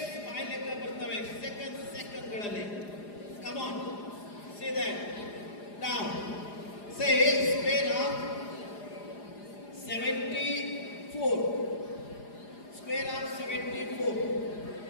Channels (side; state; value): right; late; 4.9 ms